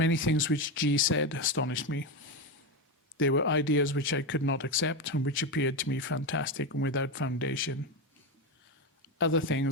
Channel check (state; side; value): normal; both; correlation 0.14